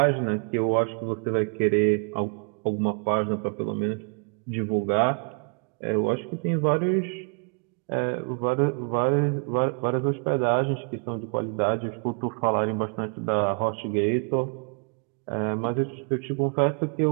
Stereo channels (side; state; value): left; quieter; 39.6 dB